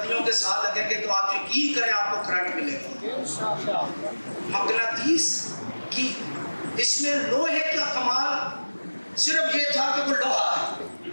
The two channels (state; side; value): inverted; both; correlation -1.00